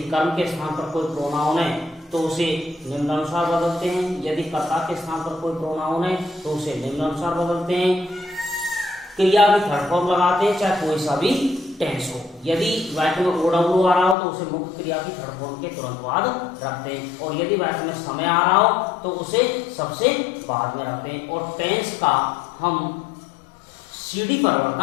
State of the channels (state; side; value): drops out; right; at 14.2 s